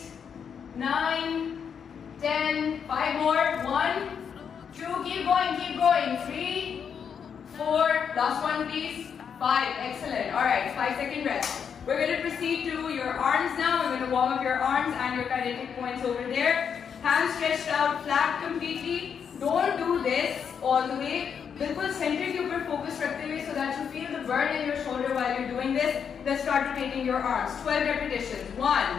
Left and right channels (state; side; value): quieter; right; 7.2 dB